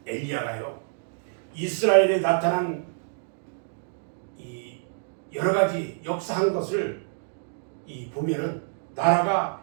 엘리야가요, 이스라엘에 나타난 이 여러 가지 역사한 것을 보면은 나라가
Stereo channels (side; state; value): left; silent; digital silence